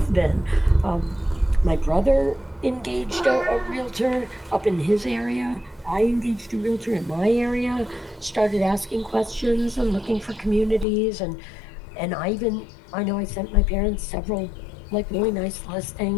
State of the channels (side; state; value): right; drops out; at 10.9 s